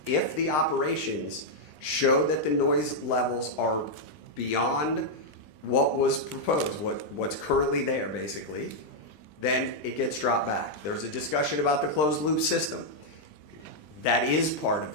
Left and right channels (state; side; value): late; right; 20 ms